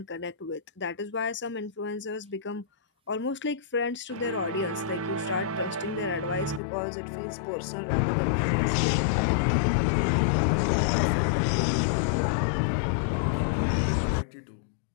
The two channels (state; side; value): drops out; right; at 6.6 s